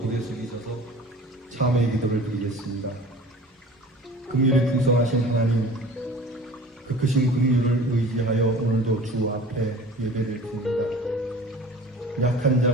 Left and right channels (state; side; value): normal; both; correlation 0.42